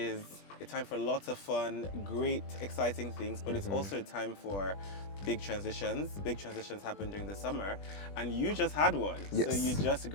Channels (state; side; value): late; right; 20 ms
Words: a time for lots of fun, great, exciting things, but it's also a time for big transitions. Big transitions happen during the summer, and you just had one. So Yes. you just